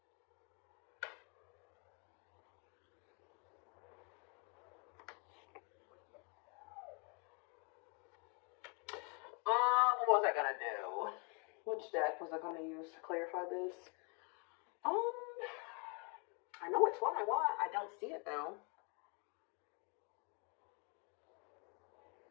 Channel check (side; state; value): right; quieter; 35.1 dB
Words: What was I gonna do? Which deck was I gonna use to clarify this? I know which one I want. I don't see it, though.